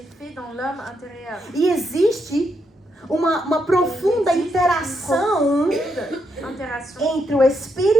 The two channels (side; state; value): both; normal; correlation 0.79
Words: fait dans l'homme intérieur. E existe uma profunda interação Interaction entre o